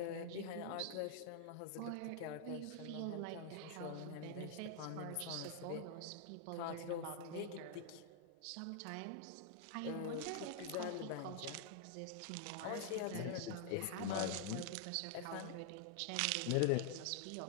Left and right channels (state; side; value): different; both; correlation 0.00